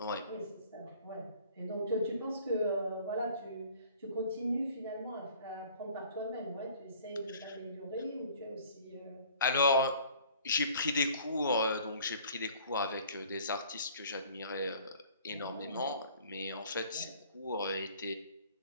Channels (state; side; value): inverted; both; correlation -0.52